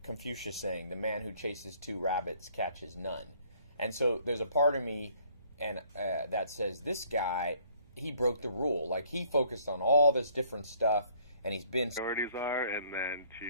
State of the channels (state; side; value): inverted; both; correlation -0.61